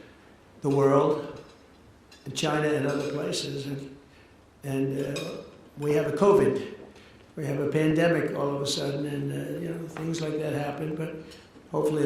the world, in China and other places. And we have a COVID. We have a pandemic all of a sudden, and things like that happen. But hopefully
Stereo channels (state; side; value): identical; both; correlation 1.00